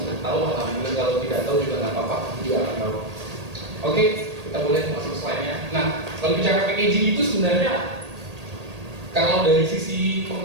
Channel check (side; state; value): left; late; 1.8 ms